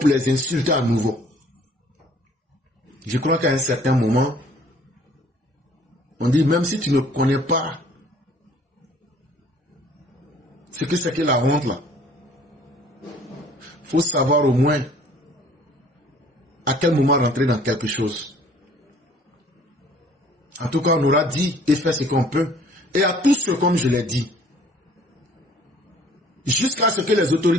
les insulter à nouveau. Je crois qu'à un certain moment, on dit même si tu ne connais pas ce que c'est que la honte là, faut savoir au moins à quel moment rentrer dans quelque chose. En tout cas, on aura dit et fait ce qu'on peut. Et à tous ceux, comme je l'ai dit, jusqu'à ce que les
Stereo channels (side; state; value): both; normal; correlation 0.55